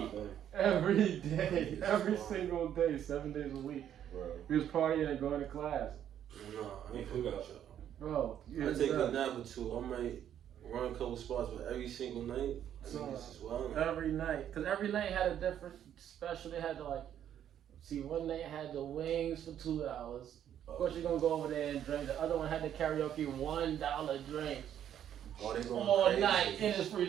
Every day. Every single day, 7 days a week. Bro. We was partying and going to class. No, I ain't fucking with y'all. Bro, I take a nap or two. I might run a couple spots, but every single night, I mean, this is wild. Every night. Because every night had a different special. They had to, like, see, one night had the wings for $2. Of course, you're going to go over there and drink. The other one had the karaoke $1 drinks. Oh, they going all crazy. night, and it's free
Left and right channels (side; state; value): left; quieter; 10.1 dB